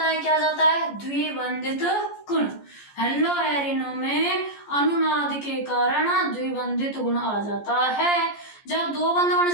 है। क्या जाता है? द्विबंधित गुण। हेलो एरिनो में अनुनाद के कारण द्विबंधित गुण आ जाता है। जब दो बंध बन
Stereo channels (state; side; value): late; right; 14 ms